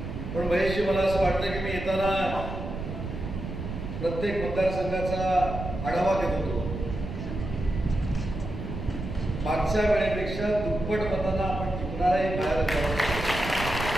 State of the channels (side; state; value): right; noise; rumble, 7 dB below the sound